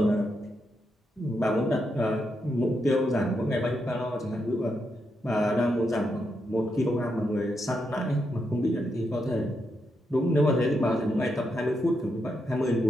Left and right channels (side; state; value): both; normal; correlation 0.82